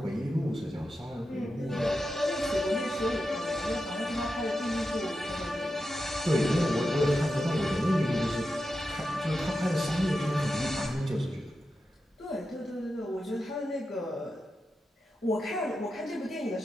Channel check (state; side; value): normal; both; correlation 0.90